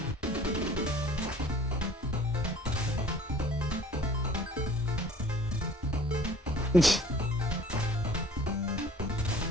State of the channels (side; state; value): both; normal; correlation 0.51